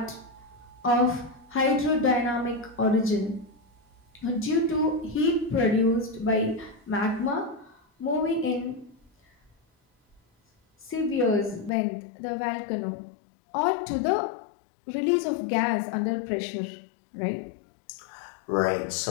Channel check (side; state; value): right; drops out; at 11.7 s